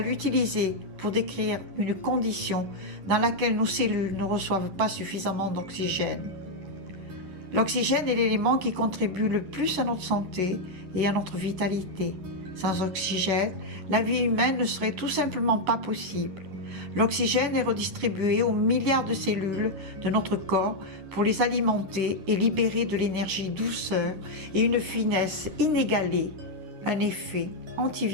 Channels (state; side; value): late; left; 10 ms